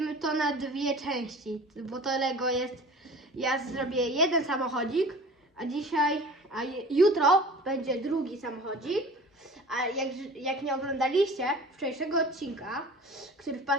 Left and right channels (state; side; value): normal; both; correlation 0.41